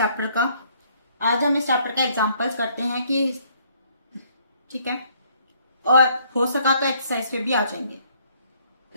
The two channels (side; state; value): both; inverted; correlation -0.65